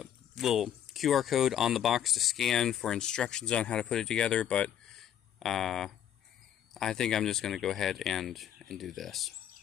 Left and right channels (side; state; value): right; quieter; 10.0 dB